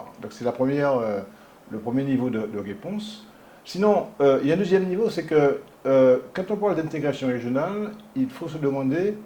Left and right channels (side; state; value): both; identical; correlation 1.00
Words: Donc, c'est le premier niveau de réponse. Sinon, il y a un deuxième niveau, c'est que quand on parle d'intégration régionale, il faut se demander